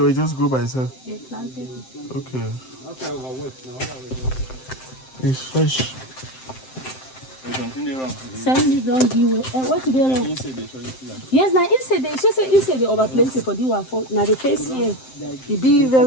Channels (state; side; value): late; right; 7.7 ms